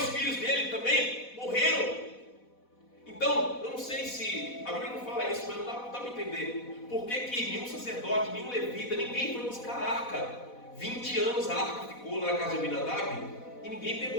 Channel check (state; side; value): late; right; 4.1 ms